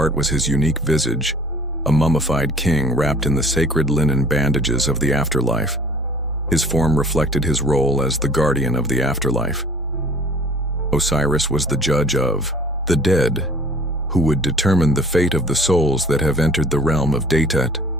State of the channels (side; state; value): both; normal; correlation 0.50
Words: was his unique visage, a mummified king wrapped in the sacred linen bandages of the afterlife. His form reflected his role as the guardian of the afterlife. Osiris was the judge of the dead, who would determine the fate of the souls that have entered the realm of Datet,